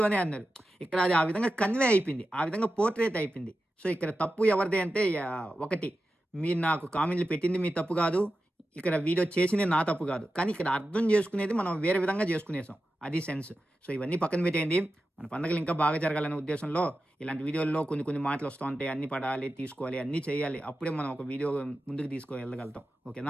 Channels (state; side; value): normal; both; correlation 0.92